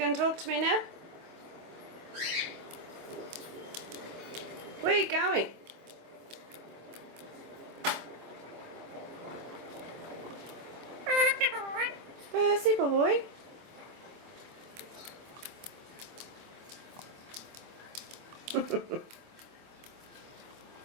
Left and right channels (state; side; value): late; left; 25 ms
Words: talk to me now? Where are you going? Percy boy.